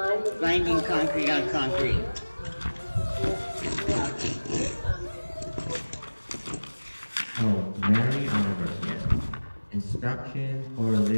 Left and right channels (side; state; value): both; inverted; correlation -1.00